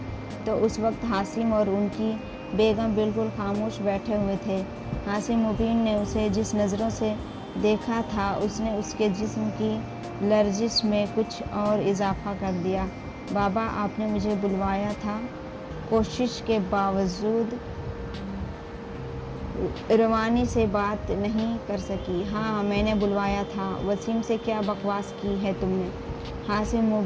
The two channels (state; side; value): identical; both; correlation 1.00